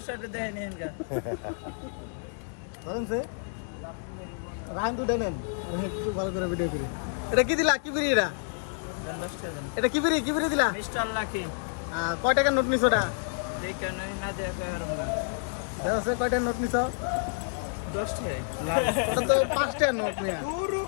সাহেব দেয় নেন গা। ধরেন সে রাইন দুটা নেন। একটু ভালো করে ভিডিও করি। এটা কি দিলা? কি ফ্রি এটা? 10 টাকা দেন। এটা কি ফ্রি দিলা? Mister lucky. কয় টাকার নোট নিছো ওটা? দেখে নাই না দেখে আর না। দেখো সে কয় টাকার নোট নিছো? 10 টাকা। ওটা তো 5 টাকার নোট মিয়া।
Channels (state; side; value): silent; right; digital silence